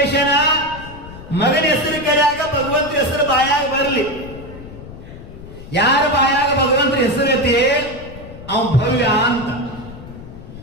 ಮಗನ ಹೆಸರು ಕರೆಯಾಗ ಭಗವಂತನ ಹೆಸರು ಬಾಯಾಗ ಬರ್ಲಿ. ಯಾರ ಬಾಯಾಗ ಭಗವಂತನ ಹೆಸರು ಐತಿ ಅವ ಭವ್ಯ ಅಂತ.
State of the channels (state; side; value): noise; left; rumble, 15 dB below the sound